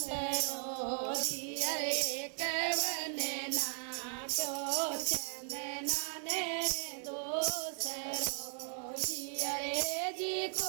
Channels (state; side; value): silent; left; 53 dB below the other